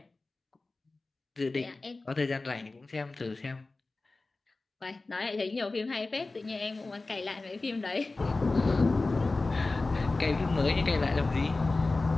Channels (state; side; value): quieter; right; 3.4 dB